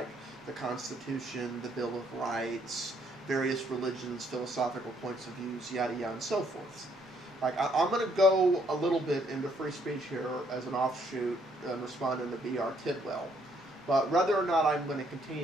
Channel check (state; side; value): normal; both; correlation 0.69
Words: the Constitution, the Bill of Rights, various religions, philosophical points of views, yada yada, and so forth? I'm going to go a little bit into free speech here as an offshoot and responding to B.R. Tidwell. But whether or not I'm going to